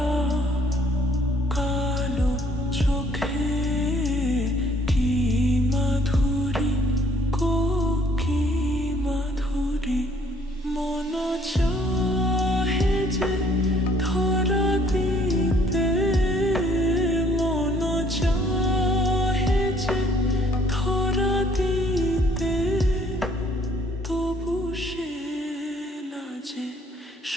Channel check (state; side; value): normal; both; correlation 0.62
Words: কালো চোখে কি মাধুরী কি মাধুরী মন চাহে যে ধরা দিতে মন চাহে যে ধরা দিতে তবু সে লাজে